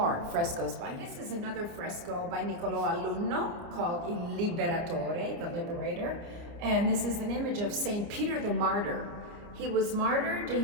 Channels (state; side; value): late; left; 29 ms